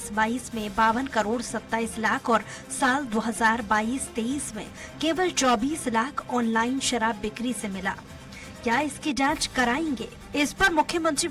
में 52 करोड़ 27 लाख और साल 2022-23 में केवल 24 लाख ऑनलाइन शराब बिक्री से मिला। क्या इसकी जांच कराएंगे? इस पर मुख्यमंत्री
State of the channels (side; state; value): both; identical; correlation 1.00